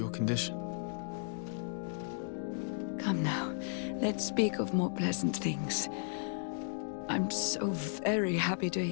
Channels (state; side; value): silent; right; digital silence